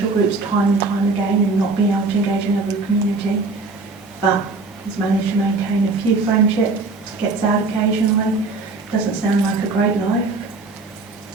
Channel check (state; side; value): quieter; left; 3.7 dB